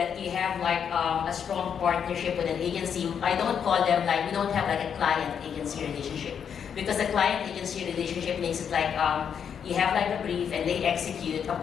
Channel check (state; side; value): quieter; right; 7.7 dB